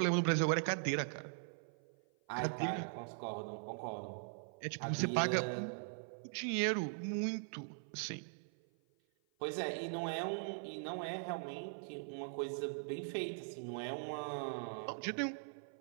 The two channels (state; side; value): silent; left; 51 dB below the other